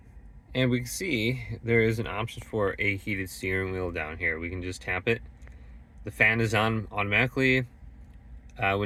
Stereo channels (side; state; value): both; identical; correlation 1.00